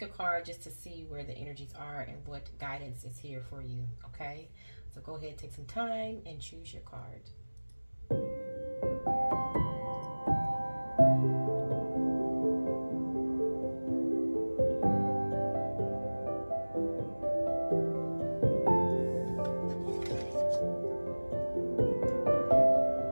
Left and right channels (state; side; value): inverted; both; correlation -1.00